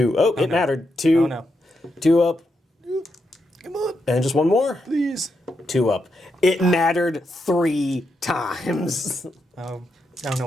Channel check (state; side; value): normal; both; correlation 0.83